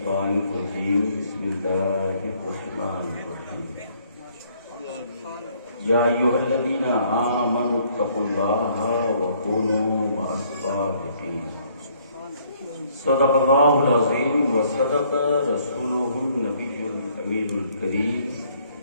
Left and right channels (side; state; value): both; inverted; correlation -0.64